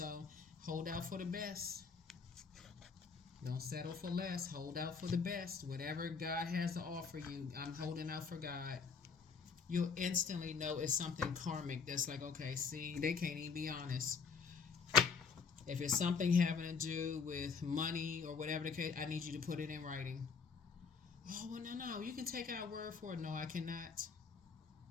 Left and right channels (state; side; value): quieter; right; 5.6 dB